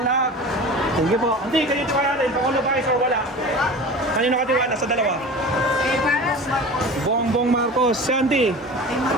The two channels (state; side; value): normal; both; correlation 0.36